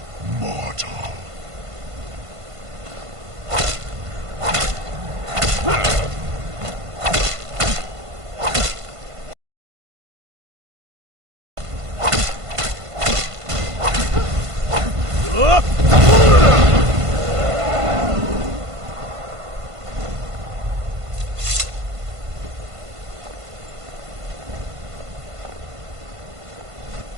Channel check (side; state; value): left; late; 1.5 ms